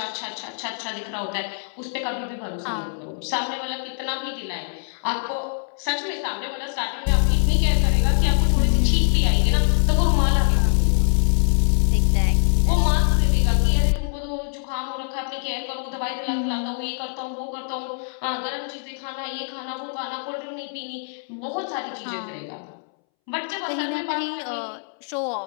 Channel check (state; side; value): silent; right; 63 dB below the other